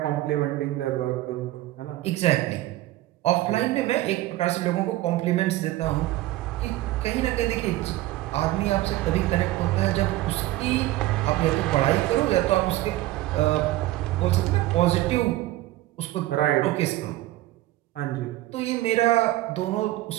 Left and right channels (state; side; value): quieter; left; 16.4 dB